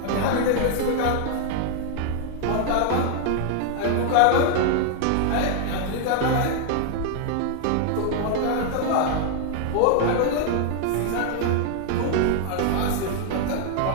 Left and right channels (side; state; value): both; different; correlation 0.00